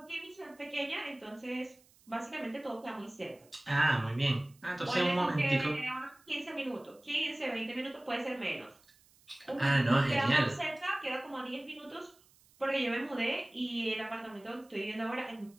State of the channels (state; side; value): noise; right; hiss, 29 dB below the sound